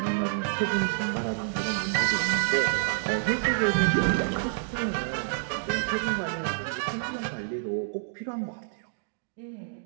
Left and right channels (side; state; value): left; silent; digital silence